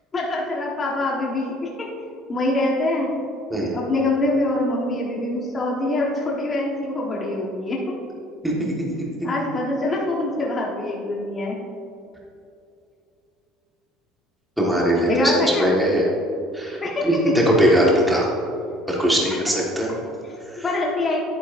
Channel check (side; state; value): both; normal; correlation 0.56